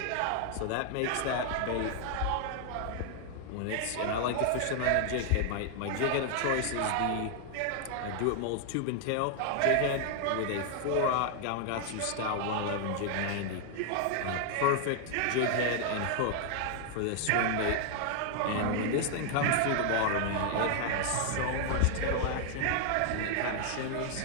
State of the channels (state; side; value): different; both; correlation 0.00